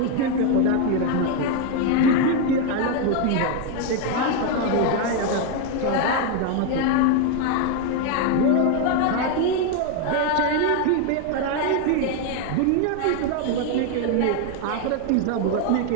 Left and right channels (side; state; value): both; different; correlation 0.01